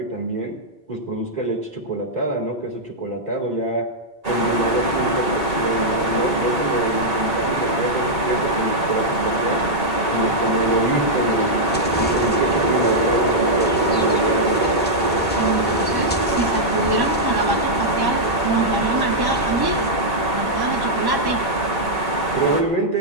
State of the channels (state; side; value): normal; both; correlation -0.06